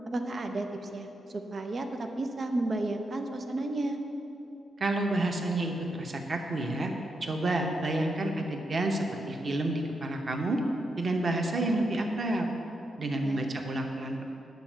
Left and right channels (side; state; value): both; normal; correlation 0.83